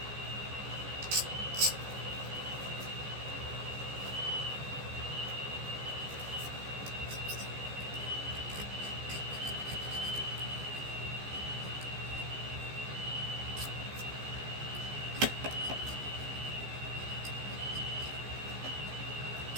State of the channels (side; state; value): left; late; 15 ms